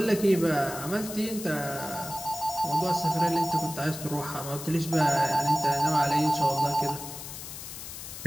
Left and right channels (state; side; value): noise; left; hiss, 10 dB below the sound